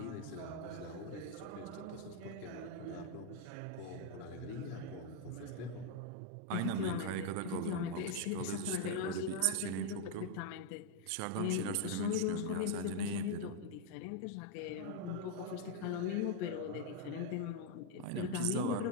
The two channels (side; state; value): both; different; correlation 0.00